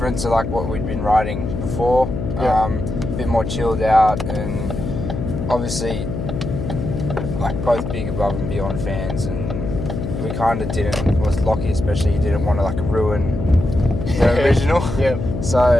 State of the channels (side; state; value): left; noise; hum, 4 dB below the sound